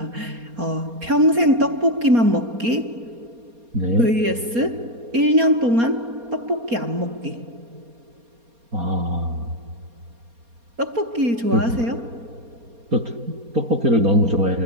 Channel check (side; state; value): left; late; 4.3 ms